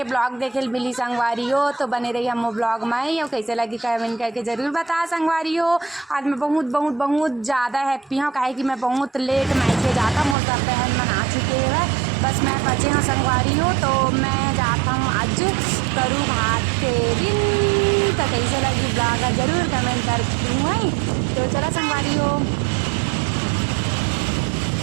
ब्लॉग देखे मिली संगवारी हो। तो बने रही हम ब्लॉग में ही, और कैसे लगी कमेंट करके ज़रूर बता संगवारी हो। आज मैं बहुत बहुत बहुत ज़्यादा हैप्पी हूँ, काहे कि मैं बहुत लेट मायके जाता, मोर सब बहन मन आ चुके हैं, बस मैं बचे हाँ संगवारी हो। तो मैं जाता हूँ आज करू भात के दिन। तो कैसे लगी ब्लॉग जरूर कमेंट कर दूँ। तो चला संगवारी हो।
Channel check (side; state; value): left; drops out; at 10.4 s